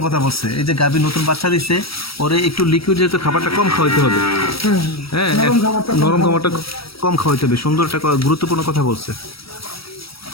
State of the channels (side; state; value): right; late; 0.75 ms